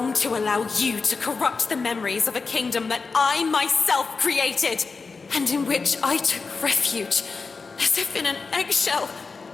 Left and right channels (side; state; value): right; quieter; 4.5 dB